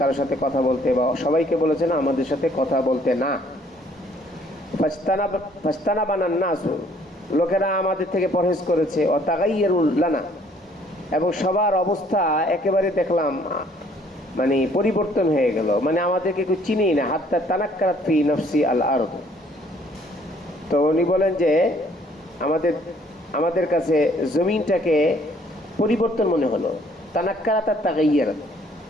সাথে কথা বলতে, বা সবাইকে বলেছেন আমাদের সাথে কথা বলতে না। ফাজতানাবানান নাসু, লোকেরা আমাদের থেকে পরহেজ করেছে। ও তাগাইয়ারুল লানা, এবং সবার অবস্থা একেবারে দেখলাম মানে পরিবর্তন হয়ে গেল, মানে আমাদেরকে কেউ চিনেই না। হাত্তা তানাক্কারাত ফি নফসি আল আরদ। তো উনি বলেন যে আমাদের কাছে জমিনটাকে পরিবর্তন মনে হলো। তানাক্কারাত আর তাগাইয়ারাত।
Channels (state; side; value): normal; both; correlation 0.61